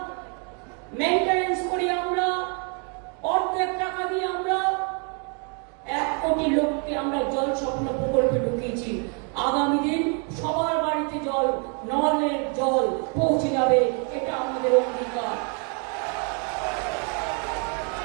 মেইনটেনেন্স করি আমরা, অর্ধেক টাকা দিয়ে আমরা 1 কোটি লোককে আমরা জল স্বপ্ন প্রকল্পে ঢুকিয়েছি। আগামী দিন সবার বাড়িতে জল, নলের জল পৌঁছে যাবে, এটা আমাদের অঙ্গীকার।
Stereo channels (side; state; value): left; quieter; 38.5 dB